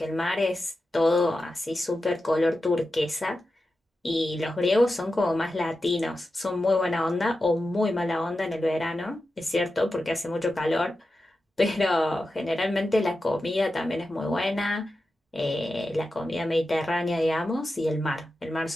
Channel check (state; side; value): normal; both; correlation 0.91